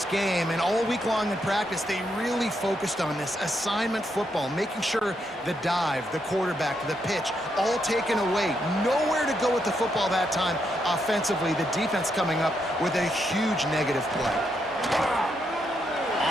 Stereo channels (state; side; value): normal; both; correlation 0.80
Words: game, and all week long in practice, they really focused on this assignment football, making sure the dive, the quarterback, the pitch, all taken away. Nowhere to go with the football that time offensively. The defense coming up with a huge negative play.